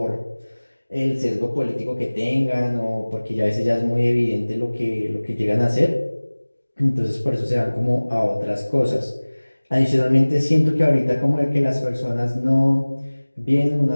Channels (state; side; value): inverted; both; correlation -1.00